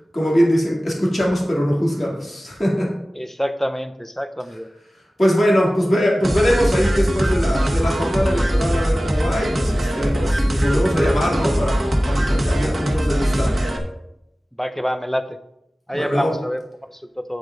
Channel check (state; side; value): normal; both; correlation 0.97